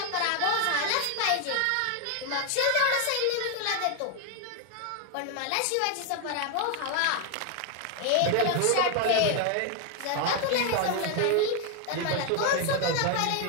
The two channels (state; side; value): different; both; correlation 0.01